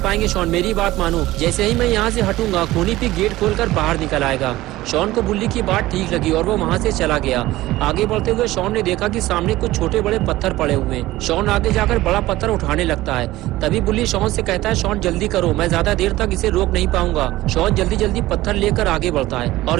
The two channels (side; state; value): left; quieter; 17.1 dB